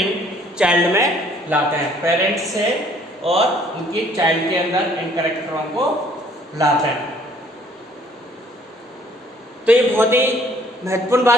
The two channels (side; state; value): both; normal; correlation 0.60